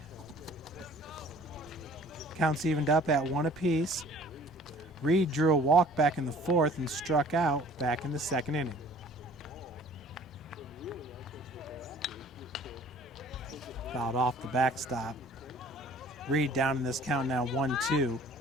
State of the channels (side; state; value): both; normal; correlation 0.52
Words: Counts evened up at 1 apiece. Reed drew a walk back in the fourth and struck out back in the second inning. Fouled off the backstop. Reed down in this count now 1-2.